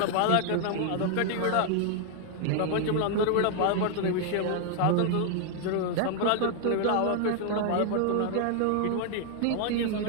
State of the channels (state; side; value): different; both; correlation 0.00